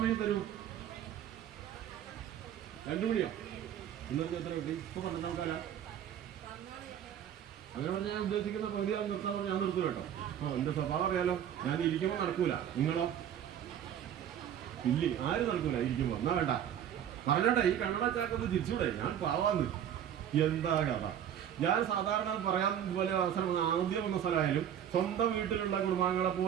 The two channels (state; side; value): quieter; left; 9.8 dB